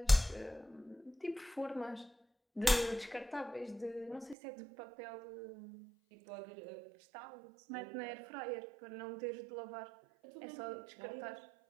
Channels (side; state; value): left; drops out; at 4.4 s